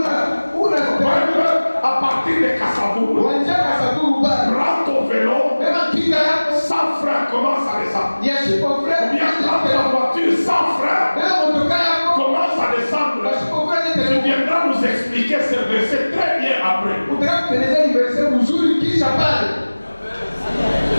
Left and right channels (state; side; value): inverted; both; correlation -1.00